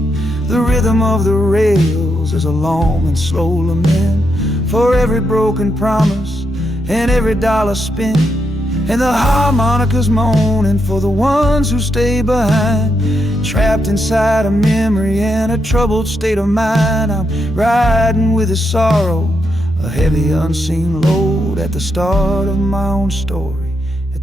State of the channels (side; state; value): both; normal; correlation 0.81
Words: The rhythm of the rails is a long and slow lament for every broken promise and every dollar spent, and the harmonica's moaning for the ones who stay behind, trapped inside a memory and a troubled state of mind. I'm riding with a sorrow, a heavy unseen load, at the start of my own story,